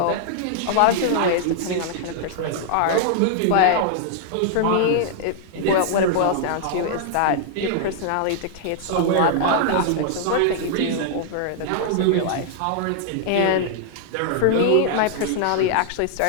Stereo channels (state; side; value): different; both; correlation -0.01